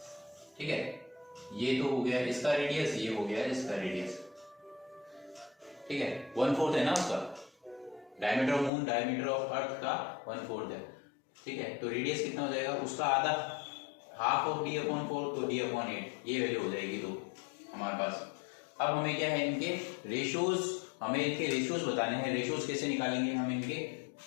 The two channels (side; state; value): right; drops out; at 8.7 s